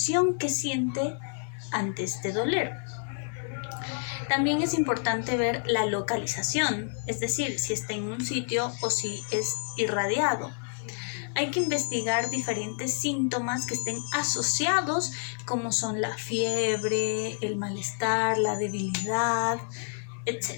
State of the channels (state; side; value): silent; right; 59 dB below the other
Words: que siente ante este doler. También es importante ver la localización, es decir, si está en un sitio o si es irradiado. Hay que investigar diferentes síntomas que estén asociados, como son la fiebre, el malestar, la debilidad,